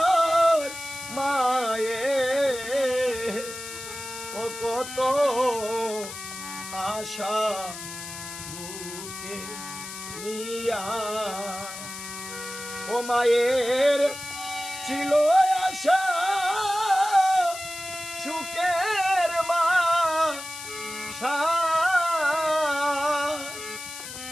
মায়ে ও কত আশা বুকে নিয়া ও মায়ের ছিল আশা সুখের মা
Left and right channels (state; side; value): noise; left; hiss, 10 dB below the sound